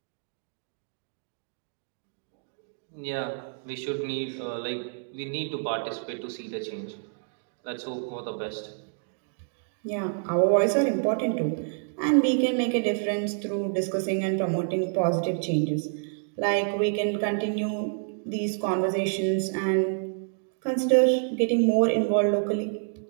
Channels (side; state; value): left; silent; digital silence